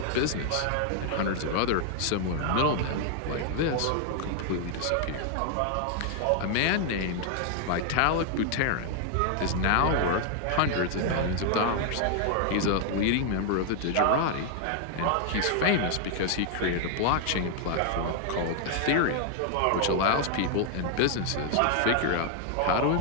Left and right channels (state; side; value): different; both; correlation 0.00